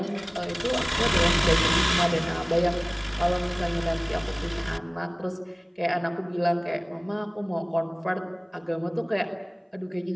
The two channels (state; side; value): identical; both; correlation 1.00